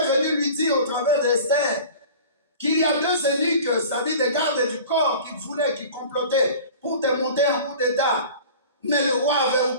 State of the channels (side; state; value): both; inverted; correlation -0.41